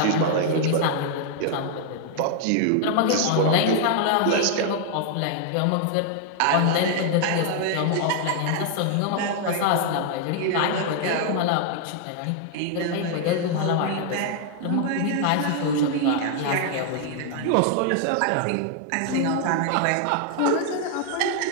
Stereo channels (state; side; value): different; both; correlation 0.00